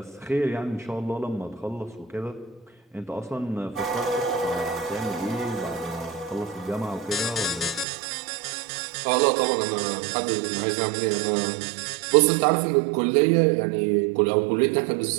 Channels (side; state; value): left; drops out; at 7.9 s